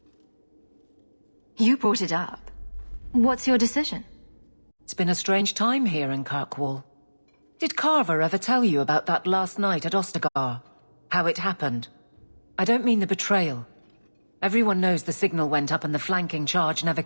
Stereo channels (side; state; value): both; inverted; correlation -1.00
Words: You brought it up. What's your decision? It's been a strange time here in Kirkwall. Did Carver ever tell you about that last night at Ostagar? How it happened? I don't mean the betrayal. Everyone knows the signal went up and the flanking charge never